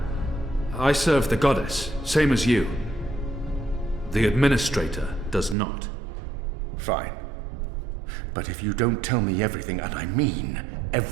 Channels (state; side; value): drops out; left; at 5.6 s